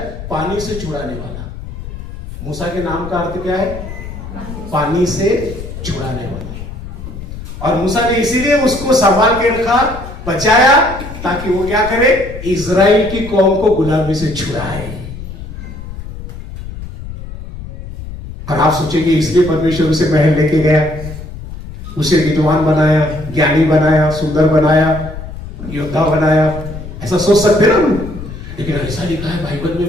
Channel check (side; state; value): left; noise; rumble, 11 dB below the sound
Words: पानी से छुड़ाने वाला। मूसा के नाम का अर्थ क्या है? पानी से छुड़ाने वाला। और मूसा ने इसीलिए उसको संभाल के रखा, बचाया, ताकि वो क्या करे? इजराइल की कौम को गुलामी से छुड़ाए। और आप सोचेंगे इसलिए परमेश्वर उसे महल लेके गया, उसे विद्वान बनाया, ज्ञानी बनाया, सुंदर बनाया, योद्धा बनाया, ऐसा सोच सकते ना? लेकिन ऐसा लिखा है बाइबल